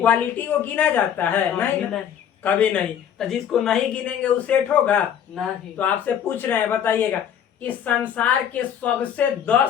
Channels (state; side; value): quieter; right; 9.0 dB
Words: को गिना जाता है? नहीं, कभी नहीं। तो जिसको नहीं गिनेंगे वो सेट होगा नहीं। तो आपसे पूछ रहे हैं, बताइएगा इस संसार के सबसे